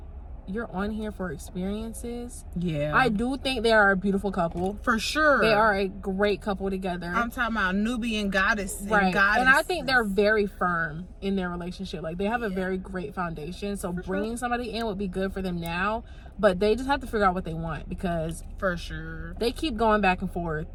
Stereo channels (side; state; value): both; identical; correlation 1.00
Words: you're on here for experiences. I do think they are a beautiful couple, for sure. They are a great couple together. I'm talking about Nubian goddess, right? And I think they're very firm in their relationship. Like, they have a very great foundation. So bringing somebody in would be good for them now, but they just have to figure out what they want, because for sure they keep going back and forth.